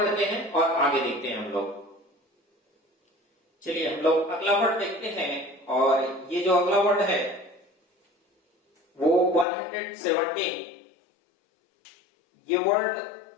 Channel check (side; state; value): right; drops out; at 9.5 s